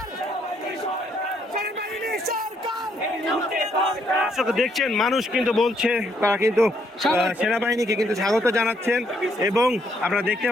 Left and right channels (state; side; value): normal; both; correlation 0.71